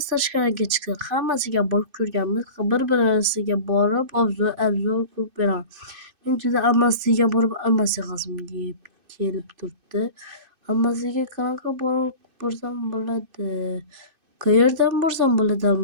tashqariga chiqdik. Hammasiga borib ko'rganmiz. Bir-birisiga borib obzor qilib beraman. Men juda almasiga borib almasiyam kelib turibdi. Almasiga qanaqa borib borsam bo'ladi? Qayerdan borsam bo'ladi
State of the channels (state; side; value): late; left; 2.6 ms